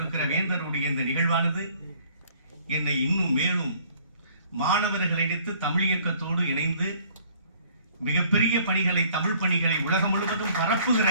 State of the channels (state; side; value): inverted; both; correlation -0.57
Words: வேந்தருடைய இந்த நிகழ்வானது என்னை இன்னும் மேலும் மாணவர்களை இணைத்து தமிழ் இயக்கத்தோடு இணைந்து மிகப்பெரிய பணிகளை, தமிழ் பணிகளை உலகம் முழுவதும் பரப்புகிற